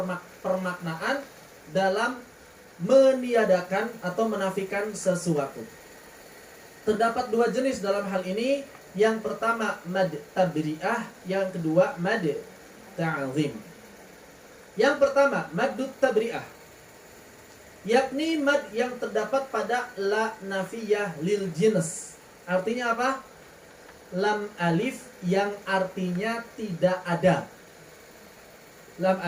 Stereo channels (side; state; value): both; identical; correlation 1.00